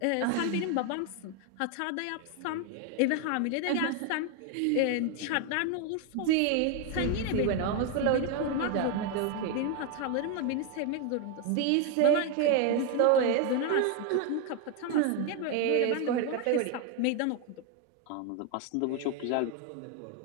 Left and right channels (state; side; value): different; both; correlation 0.01